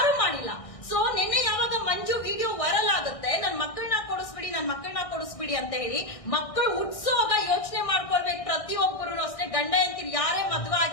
ಮಾಡಿಲ್ಲ. ಸೊ ನಿನ್ನೆ ಯಾವಾಗ ಮಂಜು ವಿಡಿಯೋ ವೈರಲ್ ಆಗುತ್ತೆ, ನನ್ ಮಕ್ಕಳನ್ನ ಕೊಡಿಸ್ಬಿಡಿ ಅಂತ ಹೇಳಿ, ಮಕ್ಕಳು ಹುಟ್ಸೋಗ ಯೋಚನೆ ಮಾಡ್ಕೊಳ್ಬೇಕು ಪ್ರತಿಯೊಬ್ಬರು ಅಷ್ಟೇ. ಗಂಡ ಹೆಂಡತಿ ಯಾರೇ ಮದುವೆ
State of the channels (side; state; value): right; late; 1.6 ms